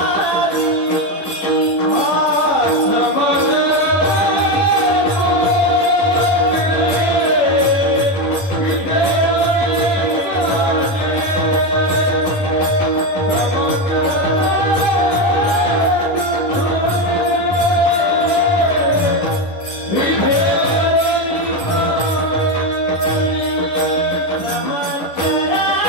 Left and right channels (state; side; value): late; right; 10 ms